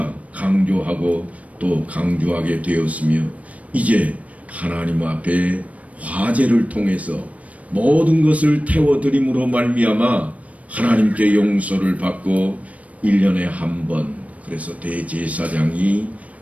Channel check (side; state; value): left; late; 0.067 ms